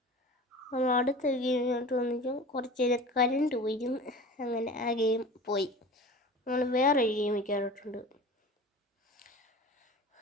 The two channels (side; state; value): both; normal; correlation 0.37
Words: നമ്മൾ അടുത്ത ഗെയിമിലോട്ട് വന്നിട്ട് കുറച്ച് നേരം കരണ്ട് പോയിരുന്നു. അങ്ങനെ ആ ഗെയിം പോയി. നമ്മൾ വേറൊരു ഗെയിമിൽ കയറിയിട്ടുണ്ട്.